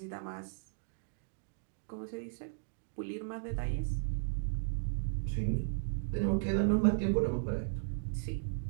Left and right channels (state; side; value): silent; left; digital silence